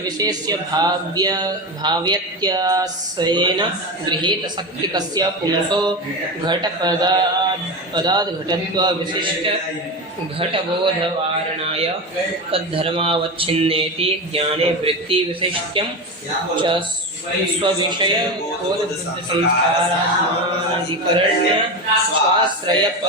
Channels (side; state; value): both; normal; correlation 0.20